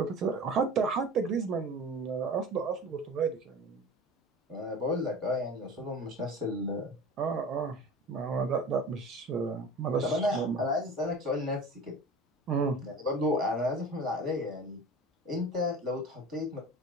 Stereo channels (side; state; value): both; normal; correlation 0.37